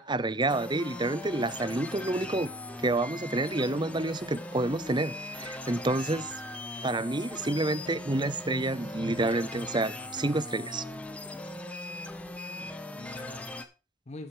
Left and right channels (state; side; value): normal; both; correlation 0.53